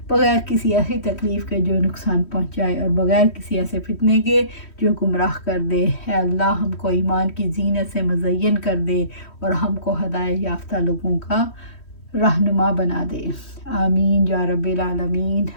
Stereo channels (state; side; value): late; right; 3.1 ms